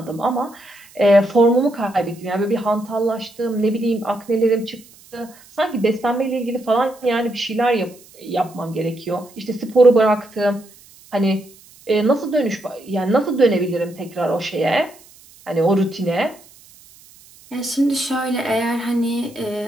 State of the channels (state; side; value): noise; right; hiss, 25 dB below the sound